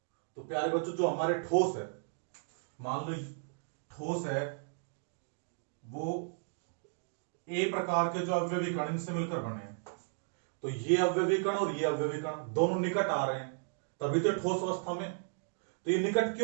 तो प्यारे बच्चों, जो हमारे ठोस है, मान लो ठोस है, वो ए प्रकार के जो अवयवी कण इनसे मिलकर बने हैं। तो ये अवयवी कण और ये अवयवी कण दोनों निकट आ रहे हैं, तभी तो ठोस अवस्था में। तो ये निकट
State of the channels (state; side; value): silent; left; digital silence